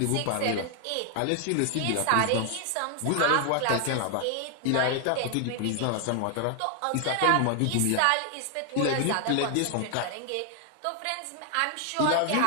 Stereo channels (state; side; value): different; both; correlation 0.00